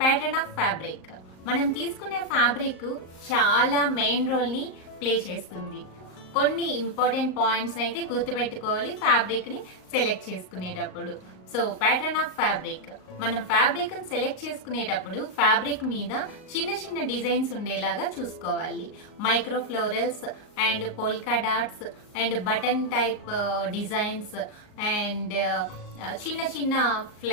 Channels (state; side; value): late; right; 38 ms